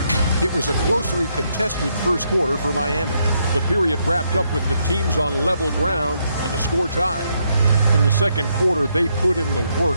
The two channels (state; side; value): inverted; both; correlation -0.76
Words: It was a closely contested first quarter for Miami. The period wrapped up with the teams on level ground and the score tied. In the second quarter, they put in the